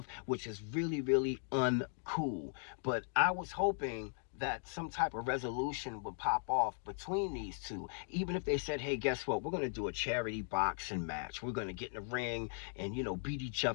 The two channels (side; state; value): right; silent; 52 dB below the other